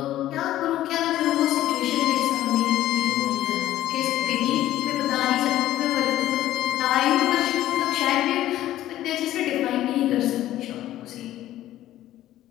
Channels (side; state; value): right; quieter; 13.8 dB